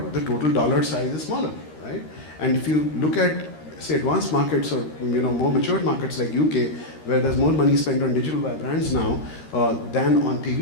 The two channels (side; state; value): right; late; 13 ms